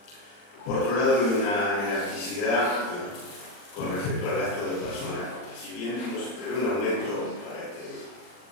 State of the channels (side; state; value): right; late; 40 ms